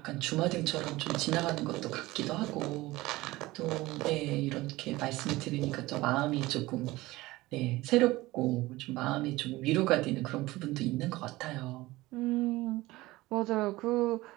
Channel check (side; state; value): left; quieter; 19.2 dB